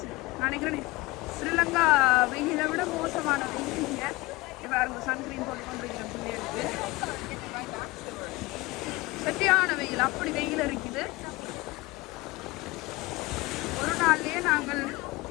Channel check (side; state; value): right; quieter; 21.7 dB